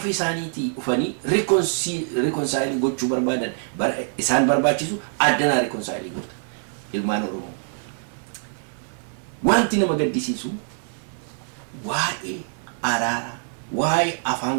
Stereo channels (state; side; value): silent; left; 62 dB below the other